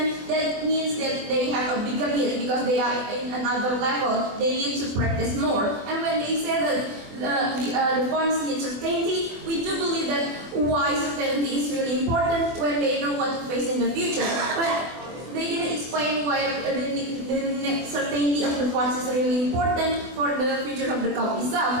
that means that they have a bigger need because they are in another level. They need to practice more. And when they say that the funds need certainty, we do believe that why certainty is really important when they know what to face in the future. But they didn't explain why the certainty of the funds is really important for the future of the club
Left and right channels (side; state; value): left; late; 24 ms